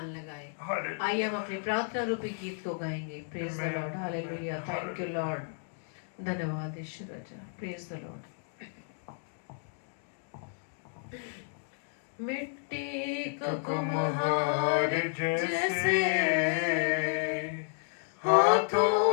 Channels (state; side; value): silent; right; digital silence